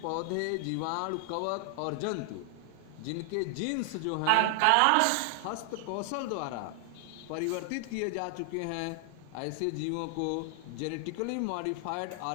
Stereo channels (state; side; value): different; both; correlation 0.00